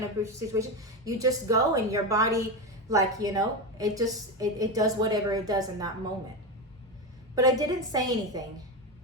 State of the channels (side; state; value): both; normal; correlation 0.16